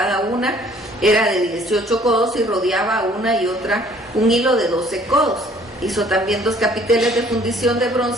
una era de 18 codos, y rodeaba una y otra un hilo de 12 codos. Hizo también 2 capiteles de fundición de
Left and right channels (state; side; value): normal; both; correlation 0.57